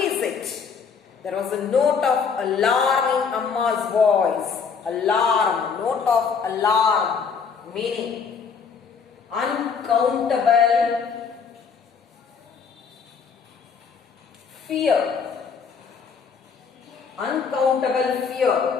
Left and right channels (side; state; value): right; quieter; 6.0 dB